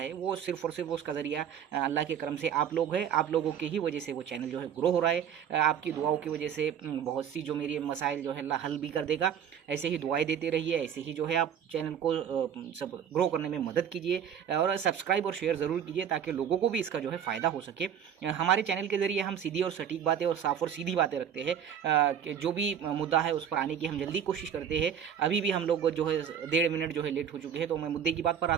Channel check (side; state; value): left; quieter; 8.6 dB